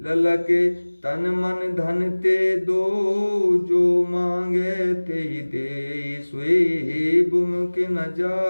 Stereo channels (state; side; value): inverted; both; correlation -1.00